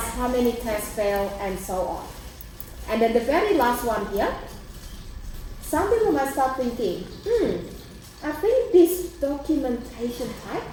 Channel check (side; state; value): both; identical; correlation 1.00